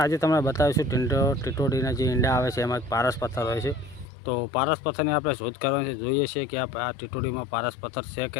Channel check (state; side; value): drops out; right; at 4.0 s